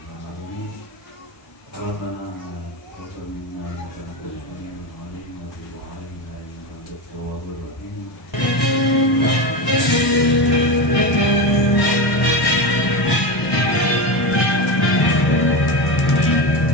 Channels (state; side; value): late; right; 1.1 ms